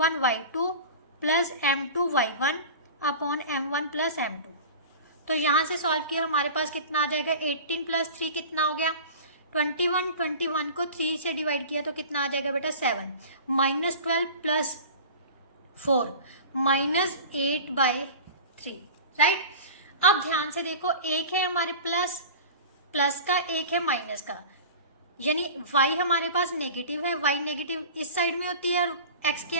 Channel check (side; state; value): both; inverted; correlation -0.36